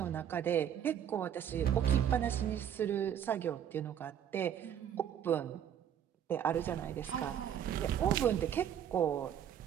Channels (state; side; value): quieter; left; 9.6 dB